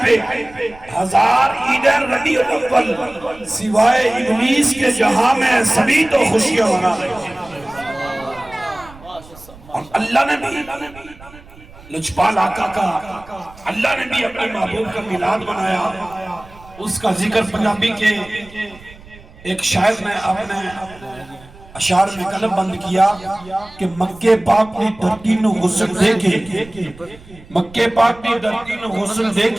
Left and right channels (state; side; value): noise; right; rumble, 21 dB below the sound